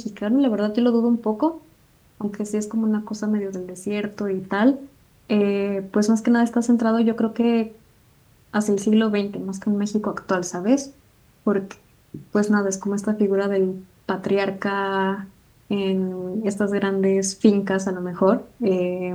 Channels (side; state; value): both; identical; correlation 1.00